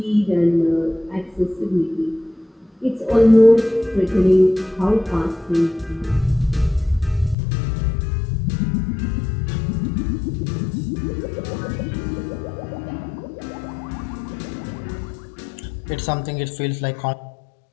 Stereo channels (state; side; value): drops out; right; at 7.4 s